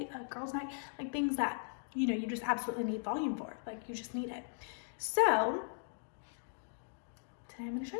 a girls' night, like things that, you know, you just absolutely need volume for. Like you just need it. So today I'm gonna show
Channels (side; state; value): right; silent; digital silence